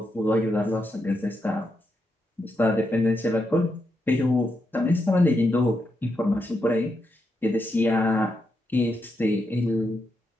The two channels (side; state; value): both; normal; correlation 0.83